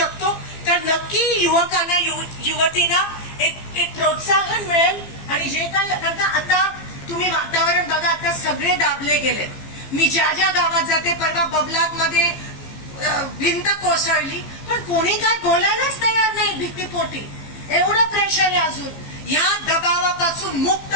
तर नक्की युवकांना युवतींना एक प्रोत्साहन मिळेल. आणि जे काही आता तुम्ही वातावरण बघा, आता सगळे दाबले गेले. मी ज्या ज्या गावात जाते, परवा बबलात मध्ये भिंत कोसळली, पण कोणी काय बोलायलाच तयार नाही. भीतीपोटी एवढं प्रेशर आहे. अजून ह्या दबावापासून मुक्त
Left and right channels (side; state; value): right; late; 15 ms